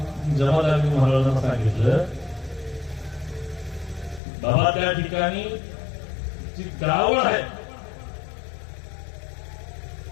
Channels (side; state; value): right; drops out; at 4.2 s